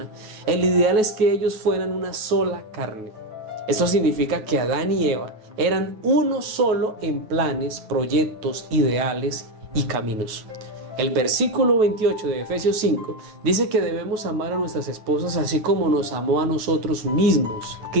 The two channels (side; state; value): left; late; 9.3 ms